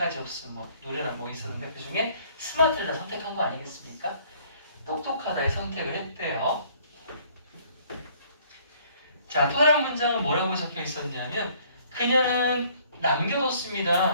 없음, 뭐 노래나 뭐 있었는데 그 중에 스마트를 다 선택한 거 아니겠습니까? 똑똑하다에 선택을 했대요. 자, 또 다른 문장은 뭐라고 적혀 있었냐면 그녀는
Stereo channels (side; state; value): both; inverted; correlation -0.60